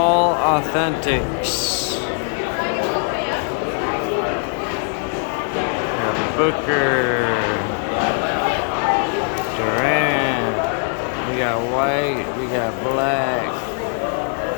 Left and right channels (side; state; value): right; silent; 55 dB below the other